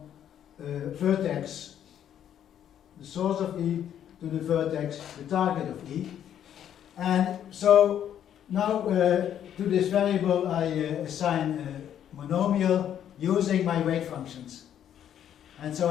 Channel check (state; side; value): quieter; right; 10.0 dB